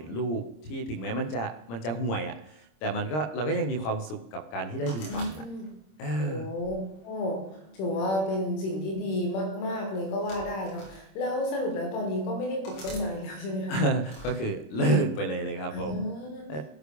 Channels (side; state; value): right; late; 26 ms